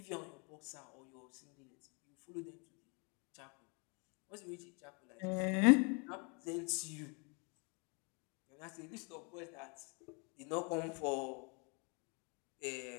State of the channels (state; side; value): quieter; right; 33.6 dB